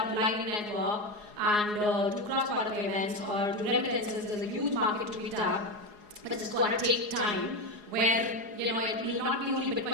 Lightning Network and do cross-border payments or do remittances? There's a huge market to be tapped, but it's going to take time. Where it will not be only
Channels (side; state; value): left; late; 4.8 ms